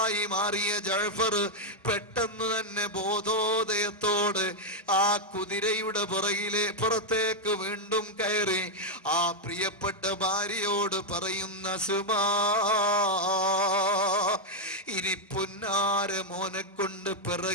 മാറിയ ജഅഫർ പെട്ടെന്ന് തന്നെ ബോധോദയത്തോട് ആ കുതിരയുടെ പുറത്തേക്ക് വീണ്ടും കയറി ആ പ്രിയപ്പെട്ട ഭാര്യയോട് പറയുന്ന, സുമാ, ഇനി പുന്നാര മോനെ കൊണ്ട്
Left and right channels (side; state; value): both; normal; correlation 0.00